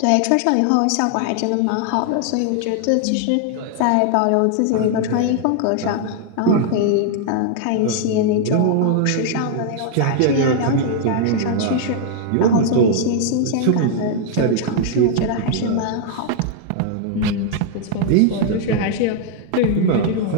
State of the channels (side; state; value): both; different; correlation 0.00